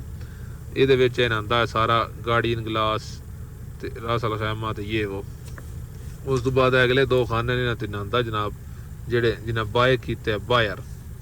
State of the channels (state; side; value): identical; both; correlation 1.00